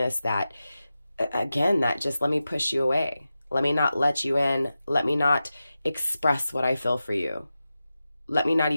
that again, that just let me push you away. Let me not let you in. Let me not express what I feel for you. Let me not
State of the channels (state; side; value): inverted; both; correlation -0.93